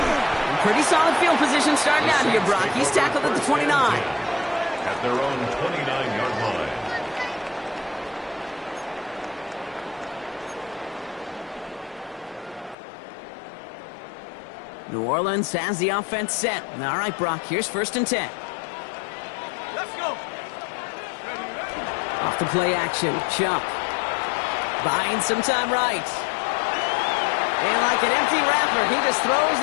Pretty solid field position starting out here, Brock. He's tackled at the 29. At their own 29-yard line. New Orleans has the offense set. All right, Brock, here's 1st and 10. Let's go. Off the play action, Chubb. Buying some time right. And like an empty wrapper, he just throws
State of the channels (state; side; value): drops out; right; at 12.8 s